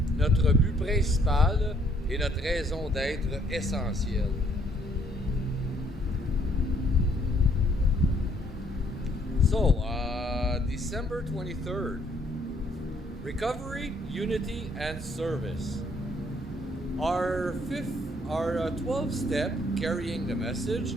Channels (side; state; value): both; normal; correlation 0.66